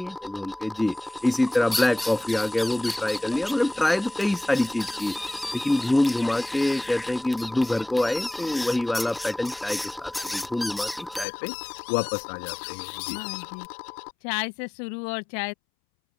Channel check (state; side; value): drops out; right; at 11.2 s